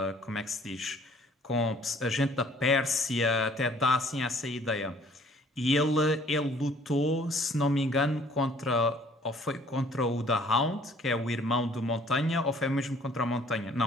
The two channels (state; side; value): normal; both; correlation 0.57